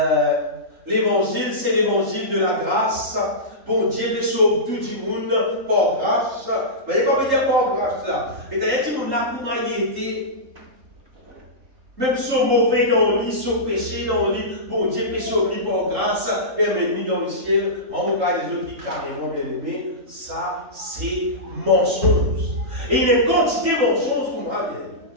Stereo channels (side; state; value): left; late; 3.8 ms